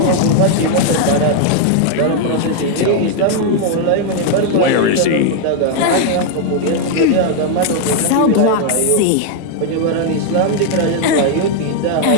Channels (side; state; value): both; different; correlation 0.00